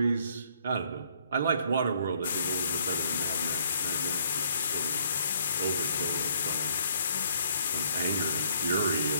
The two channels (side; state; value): both; inverted; correlation -0.65